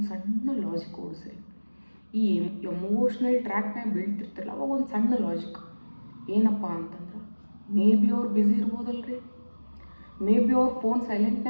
ಸಣ್ಣ ಲಾಜಿಕ್ ಓಡಿಸ್ರಿ. ಈ ಎಮೋಷ್ನಲ್ ಟ್ರ್ಯಾಕ್ನಾಗ ಬೀಳ್ತಿರ್ತಿರಲ್ಲ, ಅವಾಗ ಒಂದು ಸಣ್ಣ ಲಾಜಿಕ್ ಏನಪ್ಪ ಅಂತಂದ್ರೆ, ಮೇ ಬಿ ಅವ್ರು ಬ್ಯುಸಿ ಇರ್ಬೋದಲ್ರಿ, ಮೇ ಬಿ ಅವ್ರ ಫೋನ್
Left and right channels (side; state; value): both; inverted; correlation -1.00